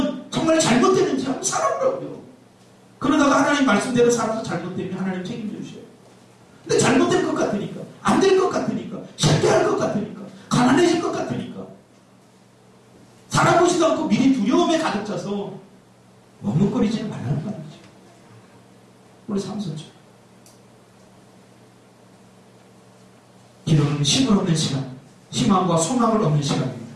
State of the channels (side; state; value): both; identical; correlation 1.00